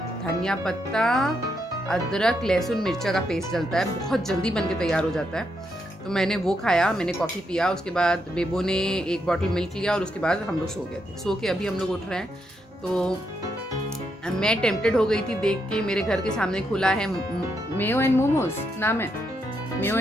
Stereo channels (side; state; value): both; normal; correlation 0.80